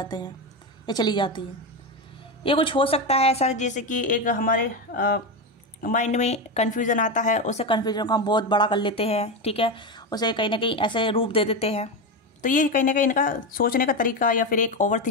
हैं, ये चली जाती है। ये कुछ हो सकता है ऐसा जैसे कि एक हमारे माइंड में कन्फ्यूज़न आता है, उसे कन्फ्यूजन को हम बहुत बड़ा कर लेते हैं। ठीक है, उसे कहीं ना कहीं ऐसे रूप दे देते हैं। तो ये कहीं ना कहीं इनका सोचने का तरीका या फिर एक ओवर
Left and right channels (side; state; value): both; normal; correlation 0.14